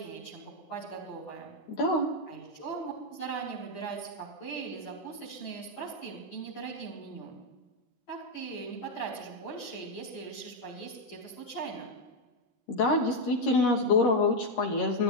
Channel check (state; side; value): late; right; 13 ms